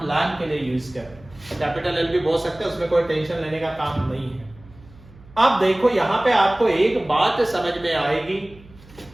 लैंप के लिए यूज कर रहे हैं। कैपिटल L भी बोल सकते हैं, उसमें कोई टेंशन लेने का काम नहीं है। अब देखो यहाँ पे आपको एक बात समझ में आएगी,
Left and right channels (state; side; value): noise; right; hum, 23 dB below the sound